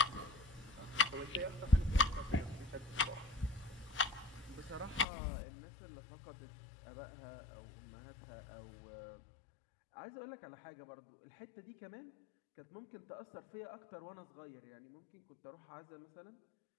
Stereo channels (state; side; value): drops out; right; at 5.1 s